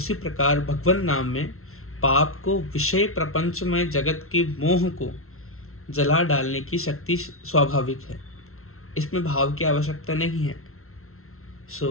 प्रकार भगवन नाम में पाप को, विषय प्रपंच में जगत के मोह को जला डालने की शक्ति स्वाभाविक है। इसमें भाव की आवश्यकता नहीं है।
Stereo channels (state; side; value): late; right; 0.62 ms